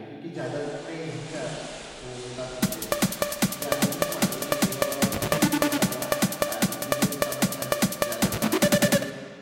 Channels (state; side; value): identical; both; correlation 1.00